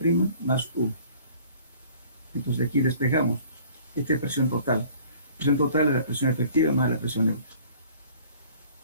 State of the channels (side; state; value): both; inverted; correlation -0.52